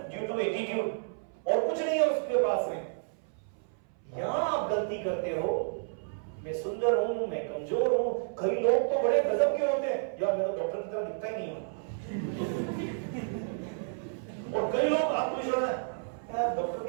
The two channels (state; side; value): silent; left; 57 dB below the other